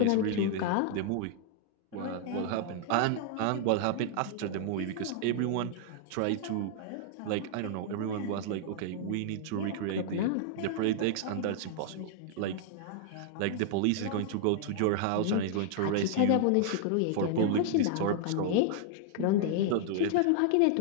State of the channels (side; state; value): both; different; correlation -0.01